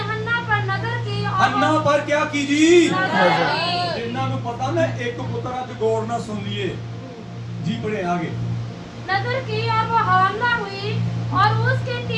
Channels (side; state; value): both; identical; correlation 1.00